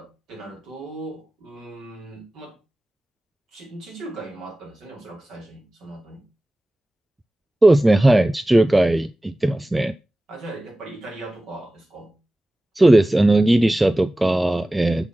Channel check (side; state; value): both; normal; correlation 0.97